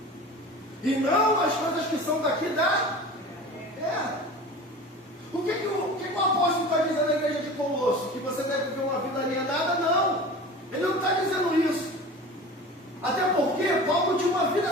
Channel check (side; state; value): both; normal; correlation 0.36